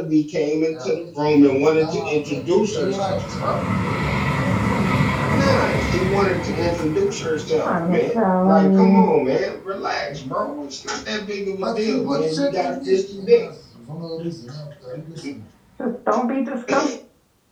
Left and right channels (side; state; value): both; identical; correlation 1.00